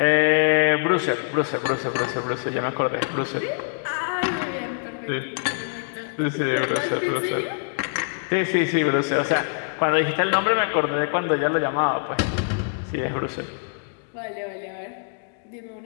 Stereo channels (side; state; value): right; silent; digital silence